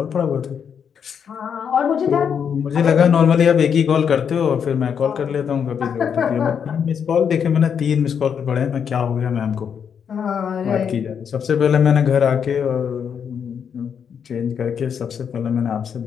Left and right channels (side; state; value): right; quieter; 7.4 dB